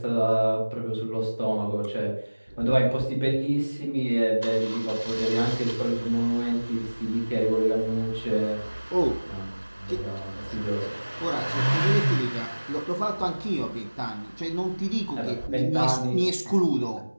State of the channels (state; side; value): inverted; both; correlation -1.00